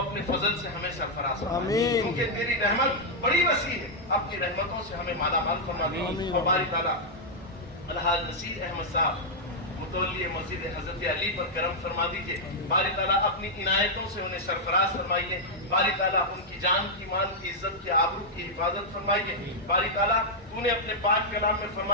فضل سے ہمیں سرفراز فرما کیونکہ تیری رحمت بڑی وسیع ہے اپنی رحمتوں سے ہمیں مالا مال فرما دیجیے اور باری تعالیٰ الحاج نصیر احمد صاحب متولی مسجد حضرت علی پر کرم فرما دیجئے باری تعالیٰ اپنی عنایتوں سے انہیں سرفراز فرمائیے باری تعالیٰ ان کی جان کی مال کی عزت کی آبرو کی حفاظت فرمائیے باری تعالیٰ تو نے اپنے پاک کلام میں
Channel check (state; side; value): normal; both; correlation -0.04